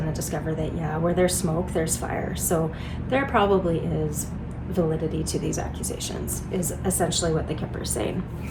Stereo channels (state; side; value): identical; both; correlation 1.00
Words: discover that, yeah, where there's smoke, there's fire. So there probably is validity to these accusations, is essentially what the Kipper is saying.